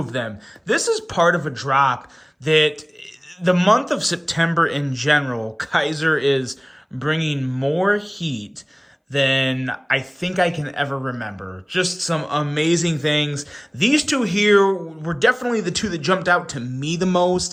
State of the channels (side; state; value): both; identical; correlation 1.00